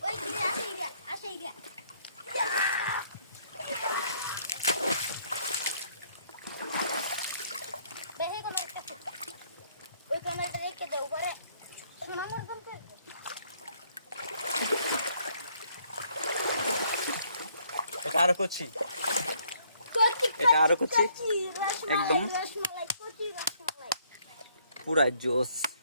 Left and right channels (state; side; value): inverted; both; correlation -0.66